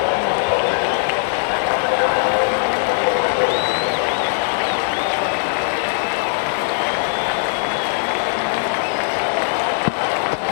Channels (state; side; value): silent; right; 66 dB below the other